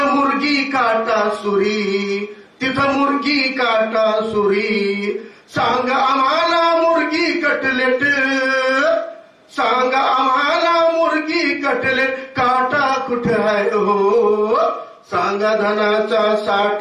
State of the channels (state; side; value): identical; both; correlation 1.00